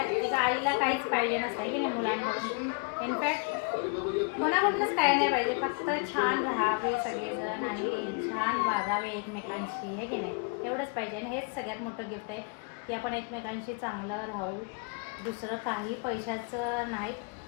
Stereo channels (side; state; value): right; quieter; 34.7 dB